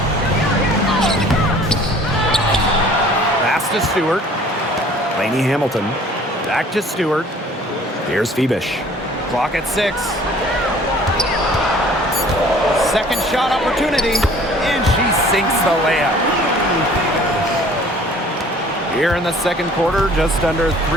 Pass to Stewart. Lainey Hamilton. Back to Stewart. Here's Phoebish. Clock at 6. Second shot opportunity. And she sinks the layup. Here in the second quarter, just under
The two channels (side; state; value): both; normal; correlation 0.52